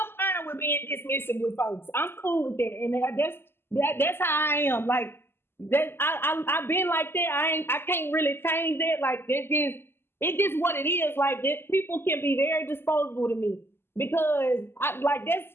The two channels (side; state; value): right; late; 0.11 ms